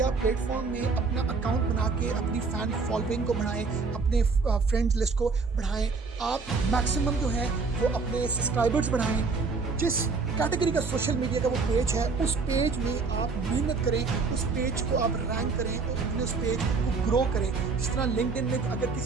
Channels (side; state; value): left; quieter; 4.5 dB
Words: प्लेटफॉर्म में अपना अकाउंट बना के अपनी फैन फॉलोइंग को बढ़ाएं, अपने फ्रेंड्स लिस्ट को बढ़ाएं। आप मैक्सिमम जो है वो अपने सब्सक्राइबर्स बढ़ाएं। जिस कैटेगरी का सोशल मीडिया का वो पेज है उस पेज में आप मेहनत करें, उस पेज को आप रैंक करें और अपने उस पेज को ग्रो करें। जिस तरह लिंक्डइन में अगर